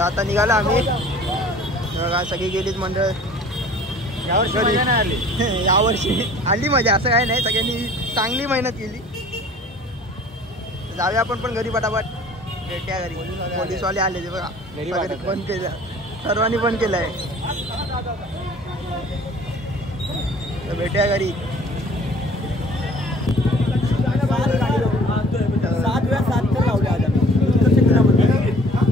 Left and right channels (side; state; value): both; normal; correlation 0.50